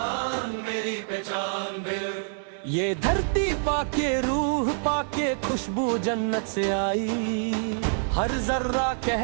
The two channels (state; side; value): silent; left; 60 dB below the other